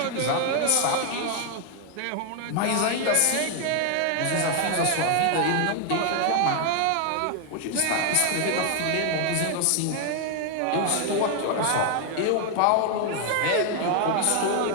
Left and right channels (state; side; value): different; both; correlation 0.00